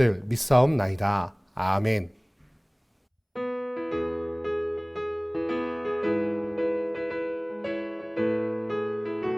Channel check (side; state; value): both; identical; correlation 1.00